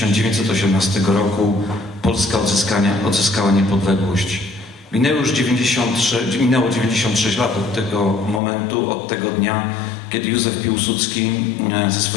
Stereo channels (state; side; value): drops out; right; at 8.4 s